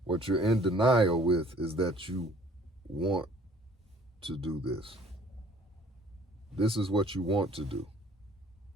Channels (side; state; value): both; normal; correlation 0.55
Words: What you're in denial with is that you want to do this. This is what you want to do.